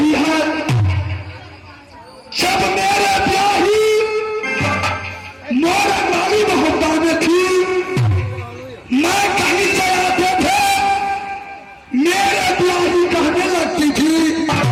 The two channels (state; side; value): identical; both; correlation 1.00